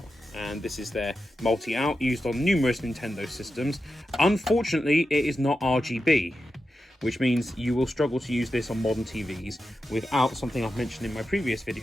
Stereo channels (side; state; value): both; normal; correlation 0.90